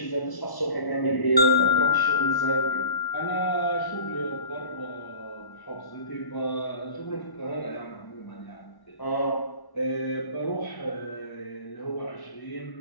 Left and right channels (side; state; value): right; late; 1.1 ms